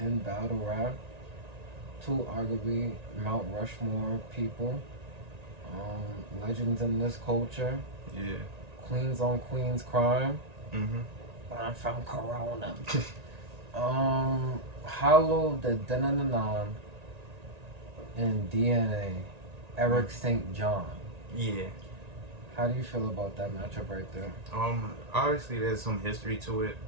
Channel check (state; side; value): late; left; 1.9 ms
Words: battle rap. Two arguably Mount Rushmore people. Legends in this culture. Yeah. Queens on Queens crime. Mm-hmm. I'm from Corona. Hollow the Denanan and DNA. Eric St. John. Yeah. How do you feel about that matchup right there? Obviously there's some history to it.